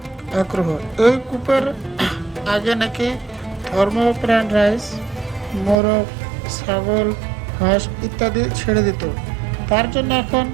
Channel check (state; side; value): drops out; left; at 5.8 s